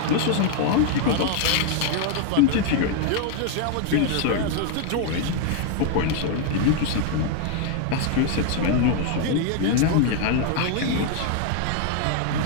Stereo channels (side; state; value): both; different; correlation 0.00